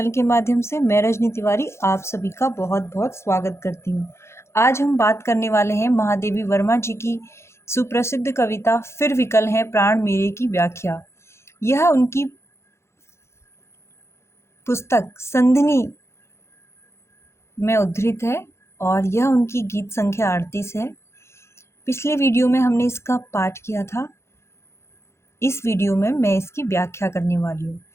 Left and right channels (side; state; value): right; late; 0.13 ms